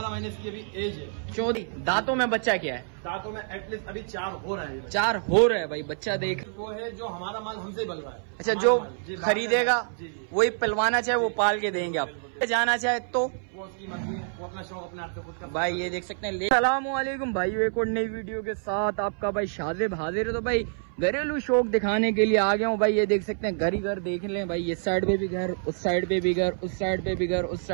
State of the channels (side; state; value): left; silent; 59 dB below the other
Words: महीने इसकी अभी एज है। 14 दांतों में बच्चा क्या है? दांतों में एटलीस्ट अभी 4 हो रहा है। 4 हो रहा है भाई। बच्चा देख वो है जो हमारा माल हमसे ही बल रहा है। अच्छा, जो खरीदेगा वही पलवाना चाहे वो पाल के देंगे आप। जाना चाहे तो वो उसकी मर्जी है, वो अपना शौक अपने आप से खुद का। भाई ये देख सकते हैं। अस्सलामुअलैकुम भाई, एक और नई वीडियो के साथ आपका भाई शाजिब हाजिर है। तो भाई घरेलू शौक दिखाने के लिए आ गया हूँ भाई। ये देख सकते हैं घर ही घर देख लें भाई। इस साइड पे भी घर, उस साइड पे भी घर, उस साइड पे भी घर, उस